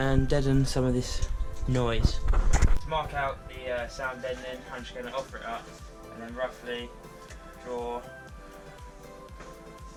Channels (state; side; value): identical; both; correlation 1.00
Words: deaden some of this noise. To mark out the sound deadening, I'm just going to offer it up and then roughly draw